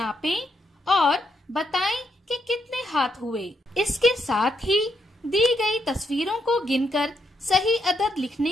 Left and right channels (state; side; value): normal; both; correlation 0.78